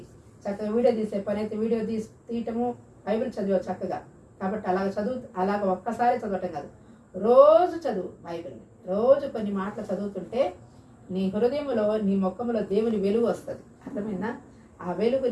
చక్కగా వీడియో తీసే పని అయితే వీడియో తీయటము, బైబిల్ చదివే చక్కగా. కాబట్టి అలాగ ఒక్కసారి చదవటం కాదు, రోజు చదువు బైబిల్ని. రోజు కొన్ని మాటలు చదువుతుంటే నీ హృదయంలో, నీ ముఖంలో దేవుని వెలుగు వస్తుంది. అర్థమైందా? ఆ వెలుగు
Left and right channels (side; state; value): both; identical; correlation 1.00